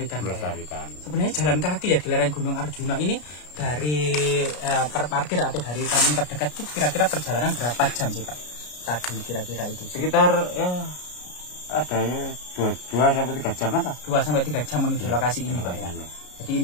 Ya. Sebenarnya jalan kaki ya di lereng Gunung Arjuna ini dari parkir atau dari kampung terdekat itu kira-kira perjalanan berapa jam sih, Pak? Tadi kira-kira itu sekitar ya ada ya 2 sampai 3 jam lah. 2 sampai 3 jam menuju lokasi ini, Pak ya. Jadi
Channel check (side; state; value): right; late; 33 ms